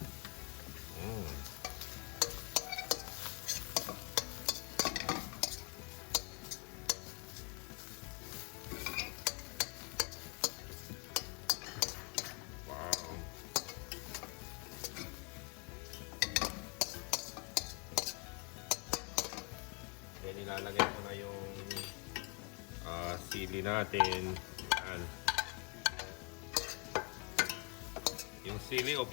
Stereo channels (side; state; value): right; quieter; 34.3 dB